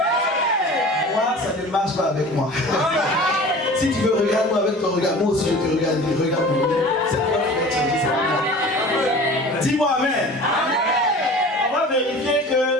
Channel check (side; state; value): both; normal; correlation 0.41